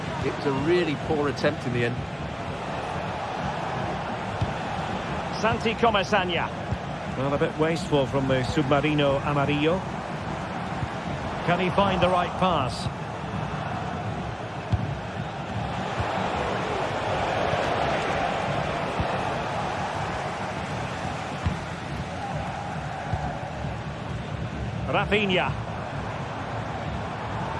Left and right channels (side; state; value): both; identical; correlation 1.00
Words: It was a really poor attempt in the end. Santi Comesaña. Well, a bit wasteful from the Submarino Amarillo. Can he find the right pass? Rafinha.